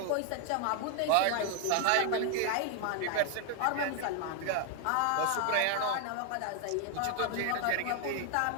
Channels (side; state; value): both; different; correlation 0.00